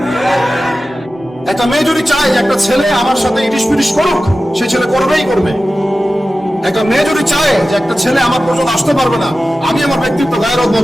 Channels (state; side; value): normal; both; correlation 0.94